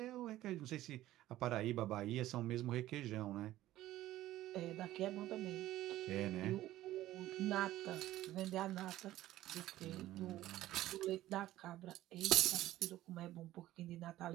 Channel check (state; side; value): quieter; left; 14.9 dB